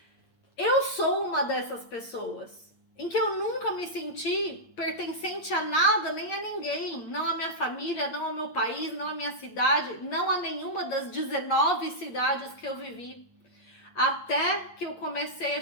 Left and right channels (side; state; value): right; late; 8.6 ms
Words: Eu sou uma dessas pessoas em que eu nunca me senti pertencente a nada, nem a ninguém. Não a minha família, não ao meu país, não a minha cidade, não a nenhuma das 19 cidades que eu vivi. Até que eu comecei a